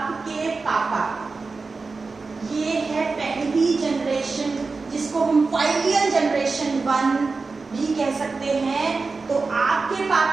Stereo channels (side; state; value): left; quieter; 4.1 dB